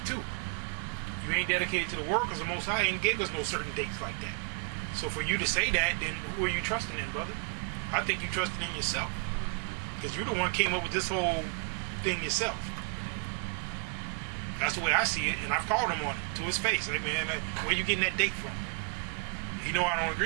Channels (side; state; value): left; quieter; 34.8 dB